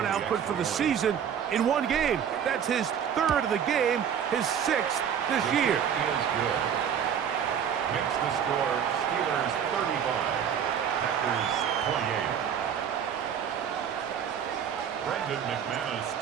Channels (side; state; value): left; quieter; 8.3 dB